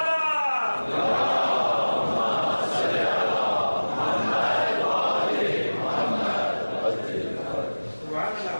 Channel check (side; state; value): both; inverted; correlation -1.00